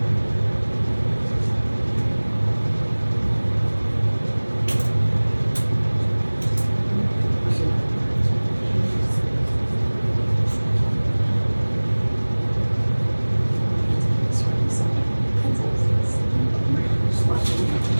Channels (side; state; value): both; inverted; correlation -1.00